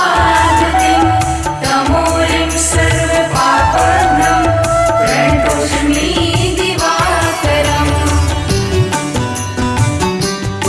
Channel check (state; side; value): identical; both; correlation 1.00